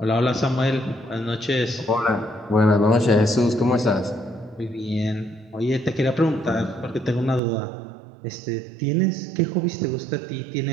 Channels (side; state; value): left; drops out; at 7.4 s